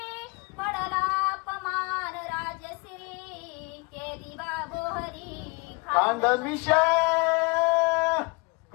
पडला अपमान राजश्री केली बाबोहरी खांडमिशा.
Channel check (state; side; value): quieter; right; 29.1 dB